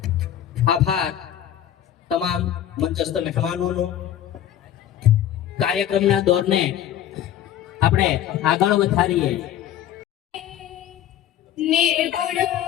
आभार तमाम मंचस्थ मेहमानोनो। कार्यक्रमना दौरने आपणे आगळ વધારીએ। निर्गुण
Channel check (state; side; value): quieter; right; 11.1 dB